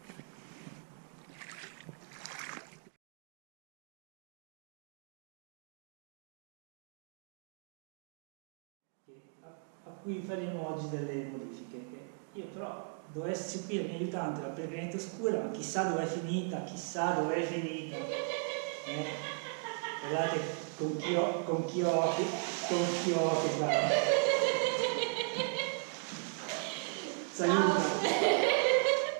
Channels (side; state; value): left; silent; 54 dB below the other